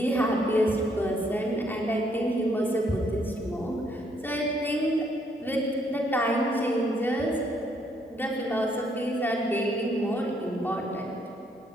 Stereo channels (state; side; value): normal; both; correlation 0.70